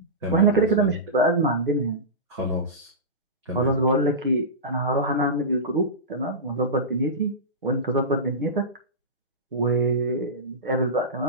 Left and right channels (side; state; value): both; normal; correlation -0.18